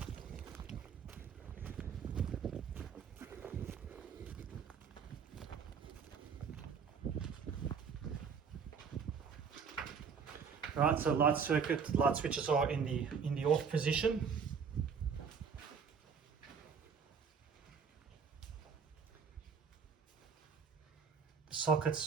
Right, so light switches are in the off position. The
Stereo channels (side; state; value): left; quieter; 6.3 dB